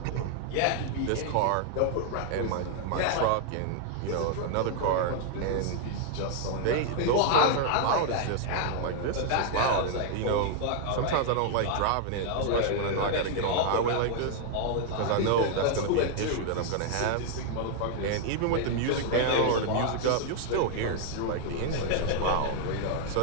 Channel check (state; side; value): different; both; correlation 0.00